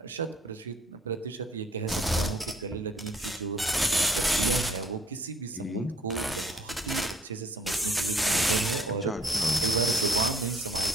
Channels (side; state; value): both; normal; correlation 0.62